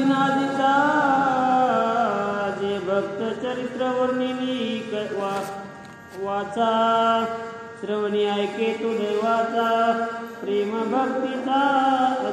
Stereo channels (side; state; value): both; identical; correlation 1.00